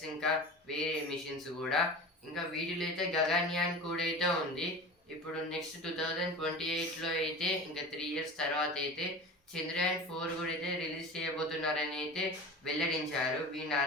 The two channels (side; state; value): both; normal; correlation 0.34